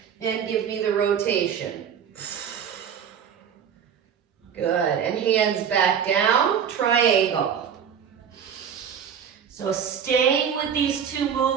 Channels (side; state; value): left; quieter; 7.9 dB